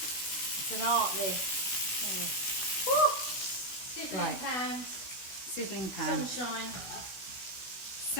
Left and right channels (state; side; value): late; right; 16 ms